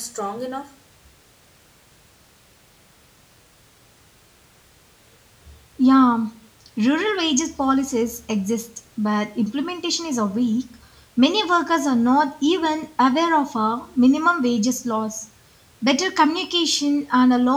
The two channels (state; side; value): identical; both; correlation 1.00